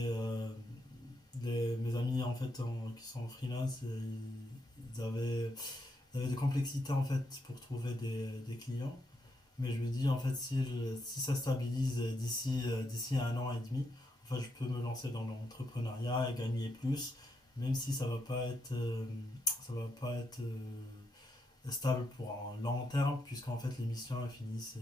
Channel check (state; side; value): normal; both; correlation 0.80